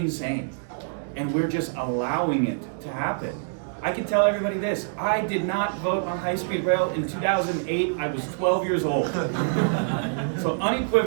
And we're just allowing it to happen. I can tell everybody this, I did not vote on high-speed rail in 2008, I was 12 years old. So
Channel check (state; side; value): silent; left; digital silence